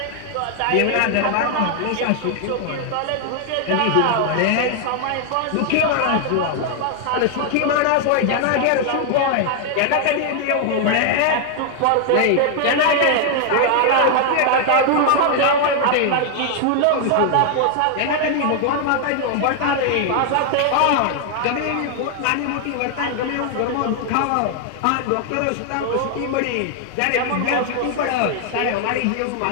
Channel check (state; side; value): different; both; correlation 0.00